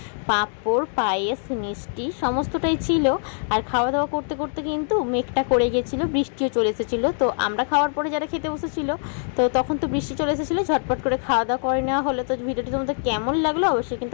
পাঁপড়, পায়েস, মিষ্টি, সমস্তটাই ছিল। আর খাওয়া দাওয়া করতে করতে কিন্তু মেঘটা করে গেছিলো, বৃষ্টিও চলে এসেছিলো। তো আমরা খাওয়ার পরে যারা খেতে বসেছিল, তো তখন তো বৃষ্টি চলে এসেছিলো, ঝটপট করে খাওয়া দাওয়া করে নেওয়া হলো। তো ভিডিওটি তোমাদের কেমন লাগলো অবশ্যই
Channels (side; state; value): right; silent; digital silence